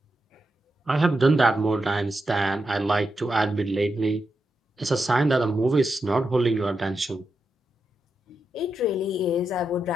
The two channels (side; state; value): both; normal; correlation 0.86